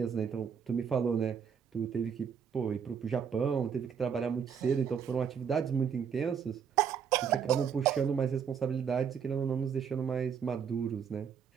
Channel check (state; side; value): quieter; left; 7.2 dB